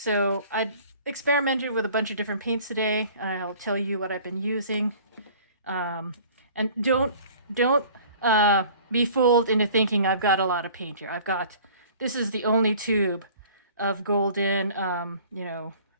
I experimented with a bunch of different paints today. I'll tell you what I've been using. And don't be fooled into thinking I've got a lot of paint here. This is the only tube of golden,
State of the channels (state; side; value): inverted; both; correlation -0.49